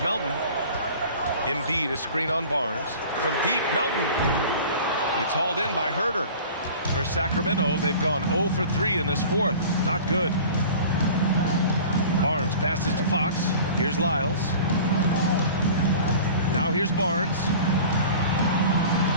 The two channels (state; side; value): inverted; both; correlation -0.41